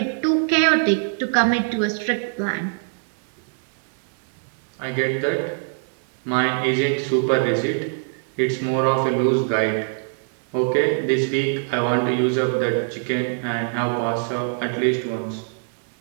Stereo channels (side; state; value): left; silent; digital silence